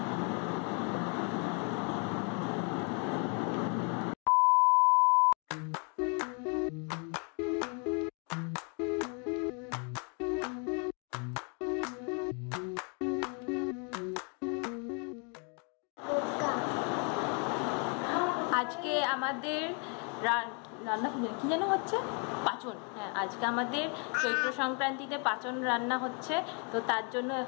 আজকে আমাদের রান্না কি যেন হচ্ছে পাচন। হ্যাঁ, আজকে আমাদের চৈত্র সংক্রান্তিতে পাচন রান্না হচ্ছে। তো তার জন্য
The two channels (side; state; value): right; quieter; 37.0 dB